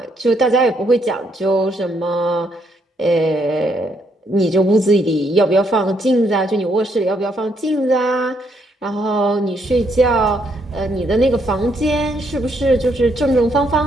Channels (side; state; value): both; normal; correlation 0.73